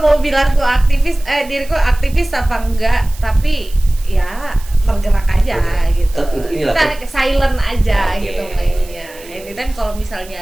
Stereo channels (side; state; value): right; noise; hiss, 20 dB below the sound